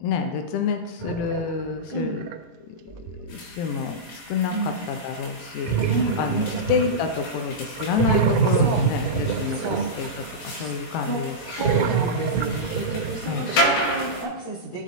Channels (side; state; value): right; late; 18 ms